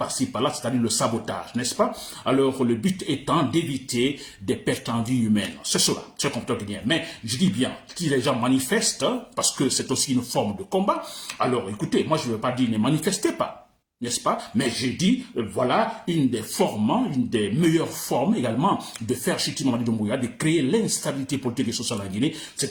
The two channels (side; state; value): both; identical; correlation 1.00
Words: par-là, c'est-à-dire le sabotage, n'est-ce pas? Alors le but étant d'éviter des pertes en vie humaine. C'est cela, c'est comme toi bien. Mais je dis bien, si les gens manifestent, parce que c'est aussi une forme de combat, alors écoutez, moi je ne veux pas dire ne manifestez pas. N'est-ce pas? Mais j'ai dit, voilà, une des meilleures formes également de faire chuter Mamadi Doumbouya, de créer l'instabilité politique et sociale en Guinée,